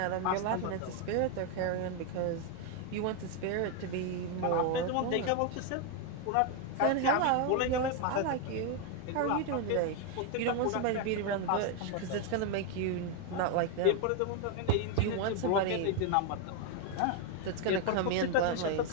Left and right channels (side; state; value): both; different; correlation 0.01